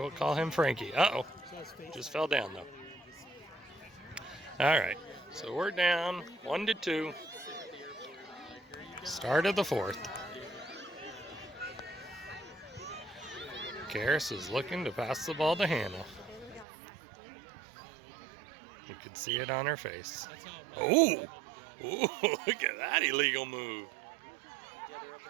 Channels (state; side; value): drops out; left; at 16.7 s